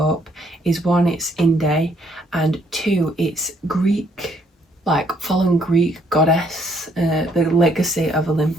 is one, it's indie, and two, it's Greek, like following Greek goddess, the legacy of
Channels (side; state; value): both; normal; correlation 0.68